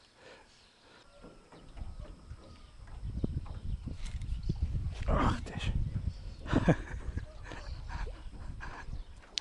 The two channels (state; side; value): identical; both; correlation 1.00